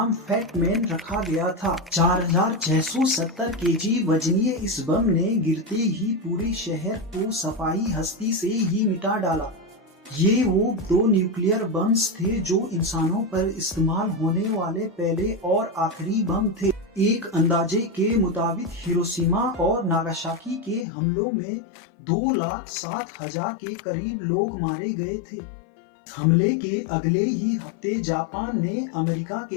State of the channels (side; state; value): right; drops out; at 20.9 s